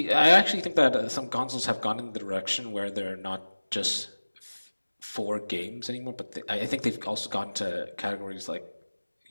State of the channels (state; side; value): inverted; both; correlation -1.00